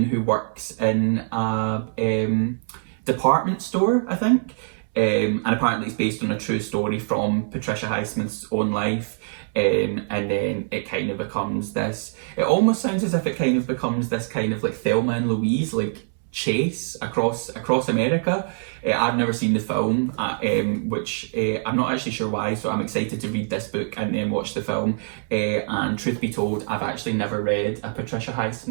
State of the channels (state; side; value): silent; left; 63 dB below the other